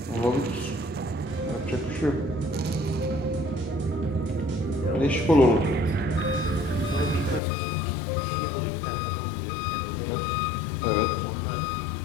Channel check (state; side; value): drops out; right; at 7.4 s